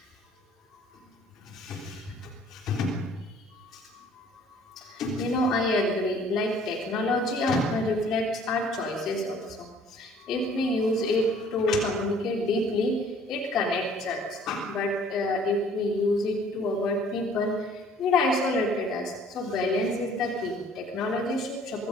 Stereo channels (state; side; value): normal; both; correlation 0.56